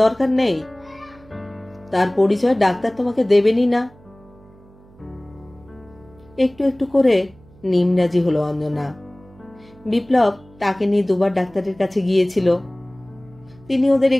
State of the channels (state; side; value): noise; right; hum, 26 dB below the sound